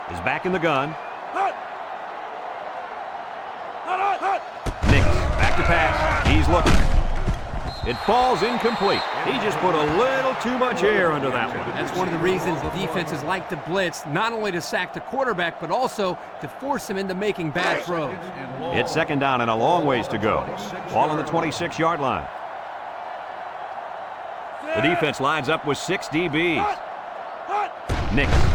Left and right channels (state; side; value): identical; both; correlation 1.00